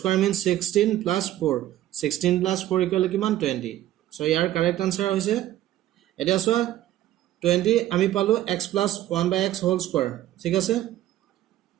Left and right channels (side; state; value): left; quieter; 13.6 dB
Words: means 16 plus 4 16 plus 4 equal to কিমান 20 so ইয়াৰ correct answer হৈছে এটা সো 20 আমি পালো x plus 1/x whole square ঠিক আছে